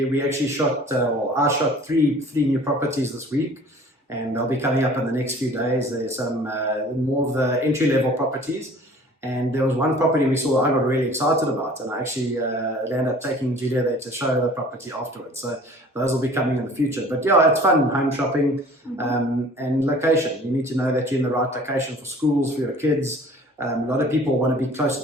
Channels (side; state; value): both; normal; correlation 0.48